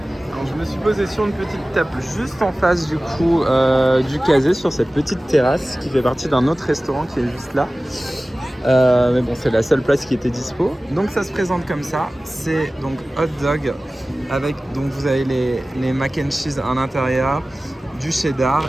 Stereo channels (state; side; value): normal; both; correlation 0.97